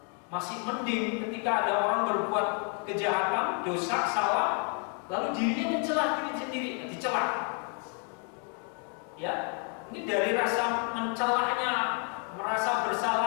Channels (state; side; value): quieter; right; 38.0 dB